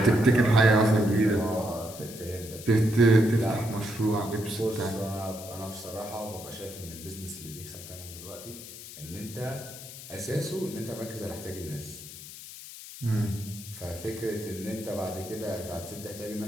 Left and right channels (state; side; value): noise; left; hiss, 13 dB below the sound